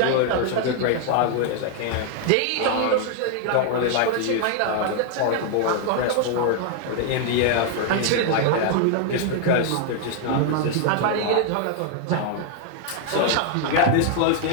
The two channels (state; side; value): different; both; correlation 0.00